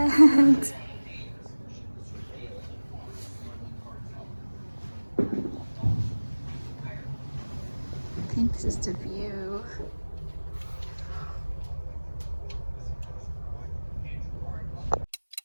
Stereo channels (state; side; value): inverted; both; correlation -1.00